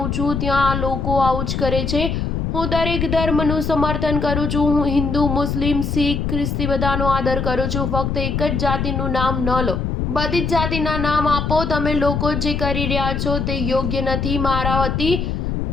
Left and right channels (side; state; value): left; noise; rumble, 1 dB below the sound